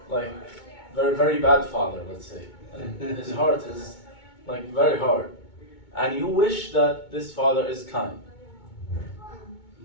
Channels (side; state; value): right; late; 2.2 ms